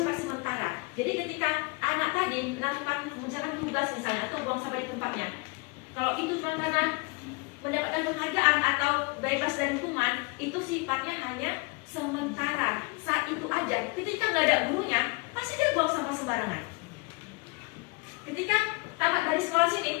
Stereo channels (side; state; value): right; quieter; 29.7 dB